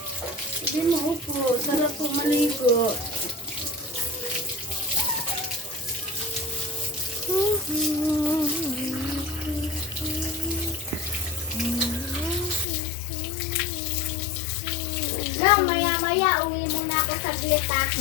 Hindi mo upo. Sarap po maligo. Maya-maya uwi muna ako saglit ah.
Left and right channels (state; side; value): drops out; right; at 12.7 s